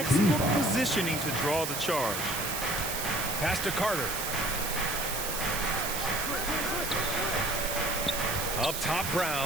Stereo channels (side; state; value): right; noise; hiss, 3 dB below the sound